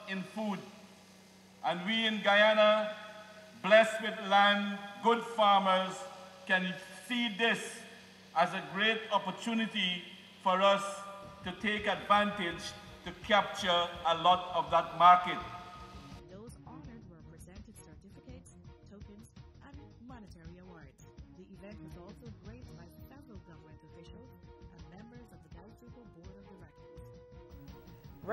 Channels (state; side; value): identical; both; correlation 1.00